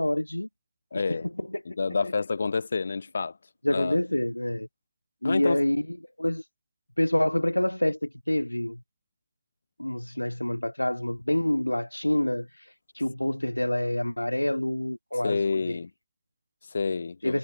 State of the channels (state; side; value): inverted; both; correlation -0.99